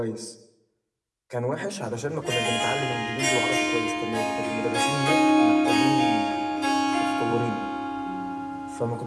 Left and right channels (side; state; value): both; identical; correlation 1.00